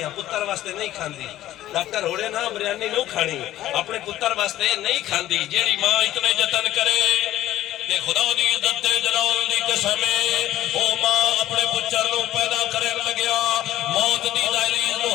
پتر واسطے نہیں کھاندی. ڈاکٹر ہوڑے نا بریانی نو کھانی اپنے پتر واسطے نہیں کھاندی. جیڑی ماں اتنے جتن کرے تے خدا دی عزت تے جلال دی قسم ہے او ماں اپنے پچر نو پیدا کرن لگیا موت دی دہلیز نو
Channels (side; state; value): right; quieter; 13.9 dB